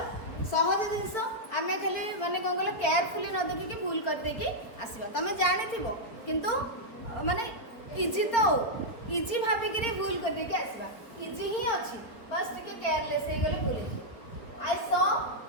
सहज जिंस आमे खाली माने कोन कहले केयरफुली न देखि कि भूल कर दे कि आसीबा तमे जानि थिबो किंतु माने इजी तो इजी भाबी कि भूल कर दे कि आसीबा इजी ही अछि बस टिके केयरलेस हे गले भूल I saw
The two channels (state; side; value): late; right; 4.6 ms